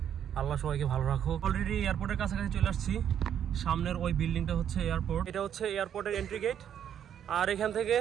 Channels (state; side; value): quieter; left; 9.3 dB